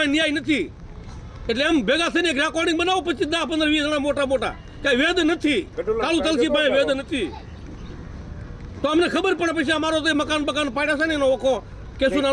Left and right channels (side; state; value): both; identical; correlation 1.00